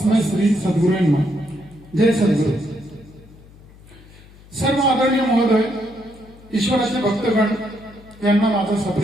श्री सद्गुरू नमः। जय सद्गुरु। सर्व आदरणीय महोदय, ईश्वराचे भक्तगण यांना माझा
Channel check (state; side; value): noise; left; hum, 23 dB below the sound